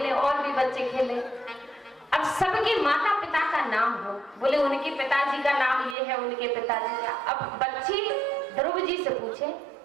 और भी बच्चे खेले। अब सबके माता पिता का नाम हो, बोले उनके पिताजी का नाम ये है, उनके पिताजी का। अब बच्चे ध्रुव जी से पूछे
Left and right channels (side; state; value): left; drops out; at 6.0 s